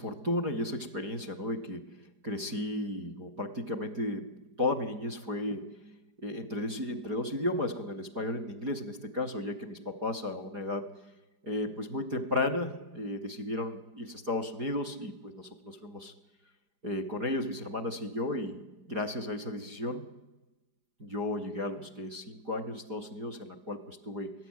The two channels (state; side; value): late; left; 4.9 ms